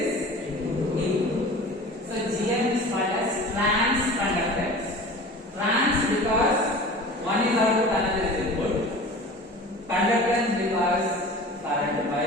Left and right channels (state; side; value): normal; both; correlation 0.39